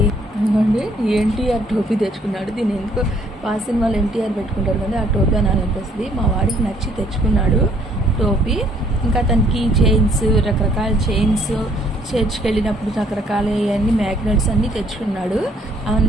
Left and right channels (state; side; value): normal; both; correlation 0.64